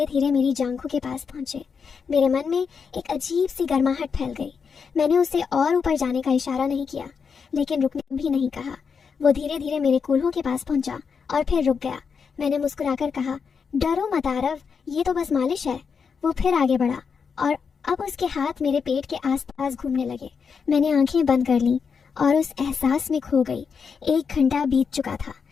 धीरे मेरी जांघों के पास पहुंचे। मेरे मन में एक अजीब सी गर्माहट फैल गई। मैंने उसे और ऊपर जाने का इशारा नहीं किया, लेकिन रुकने भी नहीं कहा। वो धीरे धीरे मेरे कूल्हों के पास पहुंचा और फिर रुक गया। मैंने मुस्कुराकर कहा, डरो मत आरव, ये तो बस मालिश है। वो फिर आगे बढ़ा और अब उसके हाथ मेरे पेट के आसपास घूमने लगे। मैंने आंखें बंद कर लीं और उस एहसास में खो गई। 1 घंटा बीत चुका था।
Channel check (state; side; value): quieter; right; 6.0 dB